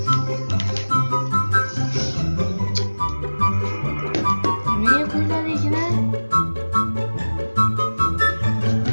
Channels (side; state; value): both; inverted; correlation -1.00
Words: Niye koydular içine?